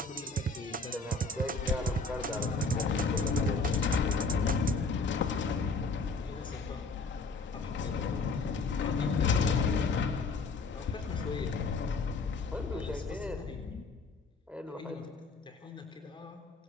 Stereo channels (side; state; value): right; quieter; 3.7 dB